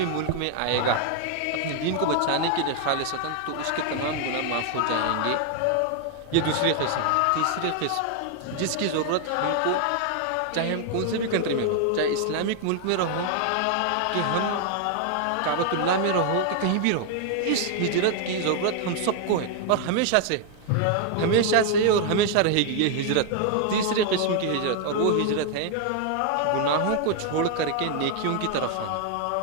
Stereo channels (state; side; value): different; both; correlation 0.00